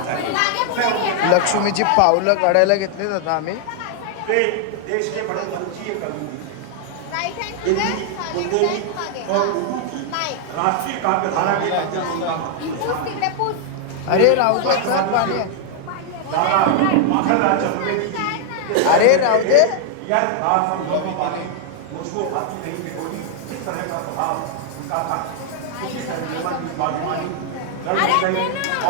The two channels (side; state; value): both; different; correlation 0.00